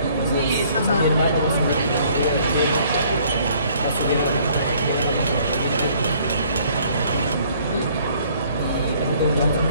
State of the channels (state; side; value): inverted; both; correlation -0.59